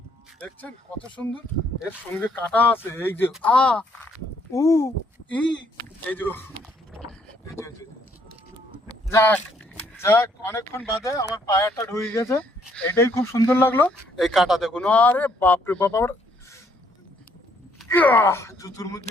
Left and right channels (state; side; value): normal; both; correlation 0.68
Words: দেখছেন কত সুন্দর। এর সঙ্গে কাটা আছে, এই যে আ উ ই, এই যে এই যে, এই যে। যাক যাক, অনেকক্ষণ বাদে আমার পায়াটা ঢুকে গেছে, এটাই খুব সুন্দর লাগলো। এই কাটা দেখুন, আরে বাপরে বাপ, আমার জুতুর মধ্যে